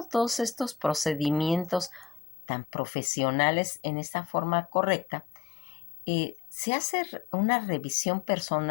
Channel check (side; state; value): right; drops out; at 2.2 s